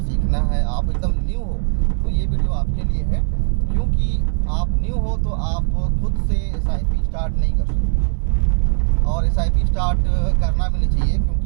है, आप एकदम न्यू हो, तो ये वीडियो आपके लिए है। क्योंकि आप न्यू हो तो आप खुद से SIP स्टार्ट नहीं कर सकते और SIP स्टार्ट करना भी नहीं चाहिए,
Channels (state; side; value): silent; left; 66 dB below the other